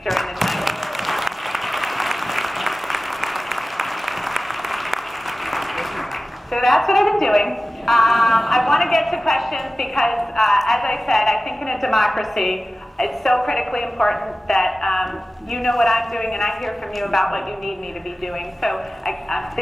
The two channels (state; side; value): normal; both; correlation 0.95